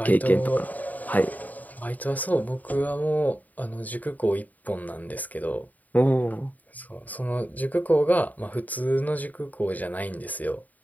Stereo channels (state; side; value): late; right; 0.078 ms